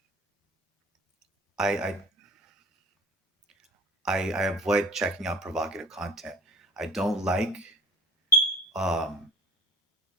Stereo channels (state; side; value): normal; both; correlation 0.43